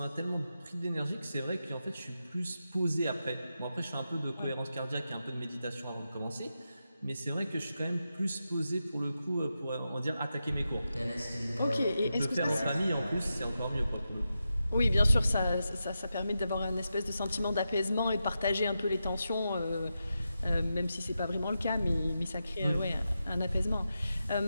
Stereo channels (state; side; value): inverted; both; correlation -0.89